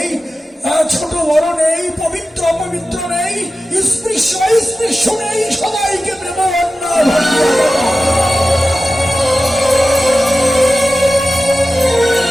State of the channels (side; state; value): both; normal; correlation 0.94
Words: ছোট বড় নেই, পবিত্র অপবিত্র নেই, স্পৃশ্য অস্পৃশ্য নেই, সবাইকে প্রেম